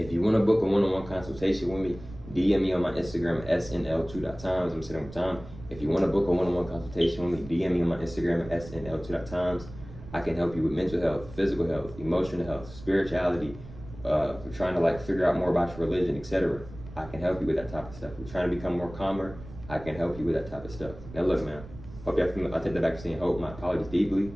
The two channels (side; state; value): right; noise; rumble, 16 dB below the sound